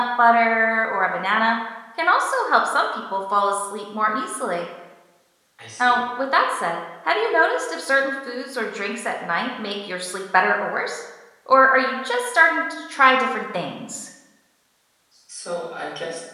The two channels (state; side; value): identical; both; correlation 1.00